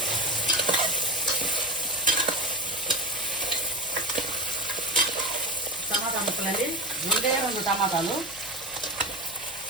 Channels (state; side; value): noise; left; hum, 23 dB below the sound